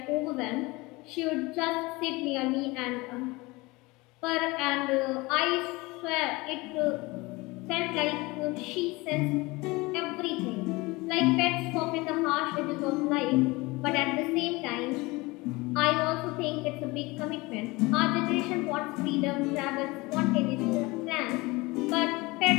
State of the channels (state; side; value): quieter; right; 23.1 dB